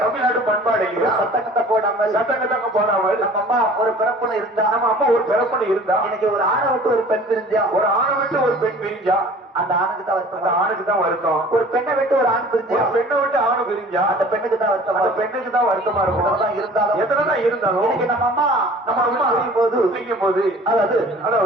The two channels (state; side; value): normal; both; correlation 0.47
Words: தமிழ்நாடு பண்பாடு இல்லையா? சட்டக்கத்தை போடாமல் நம்ம அம்மா ஒரு பிறப்புல இருந்தா, நம்ம அம்மா ஒரு பிறப்புல இருந்தா, இன்னைக்கு ஒரு ஆணை விட்டு ஒரு பெண் பிரிஞ்சா, ஒரு ஆணை விட்டு ஒரு பெண் பிரிஞ்சா அந்த ஆணுக்கு தான் வருத்தம். அந்த ஆணுக்கு தான் வருத்தம். ஒரு பெண்ணை விட்டு ஒரு ஆண் பிரிஞ்சா, ஒரு பெண்ணை விட்டு ஆணு பிரிஞ்சா அந்த பெண்ணுக்கு தான் வருத்தம். அந்த பெண்ணுக்கு தான் வருத்தமா இருக்கும். எத்தனைதான் இருந்தாலும் இன்னைக்கு நம்ம அம்மா செய்யும் போது